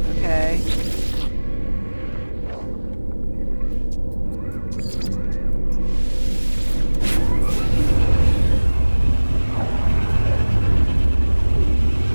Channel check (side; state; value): both; inverted; correlation -1.00